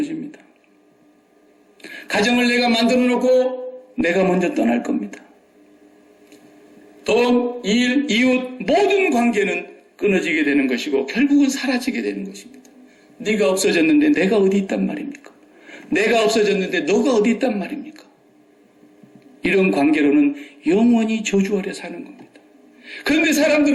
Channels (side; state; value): both; identical; correlation 1.00